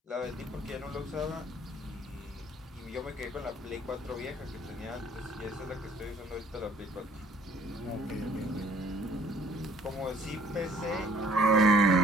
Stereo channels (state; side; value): normal; both; correlation 0.57